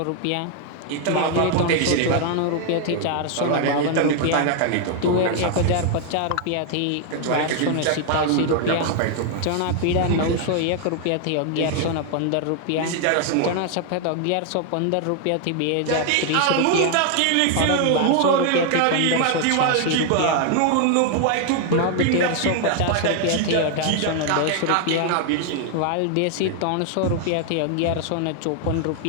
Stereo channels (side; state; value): both; different; correlation 0.00